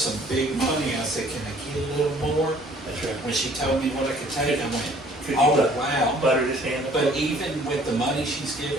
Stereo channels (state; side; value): normal; both; correlation 0.56